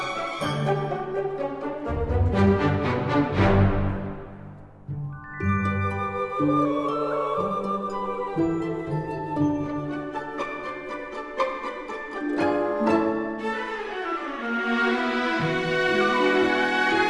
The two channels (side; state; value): both; identical; correlation 1.00